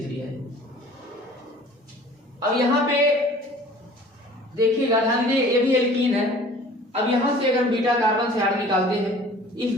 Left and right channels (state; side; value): normal; both; correlation 0.48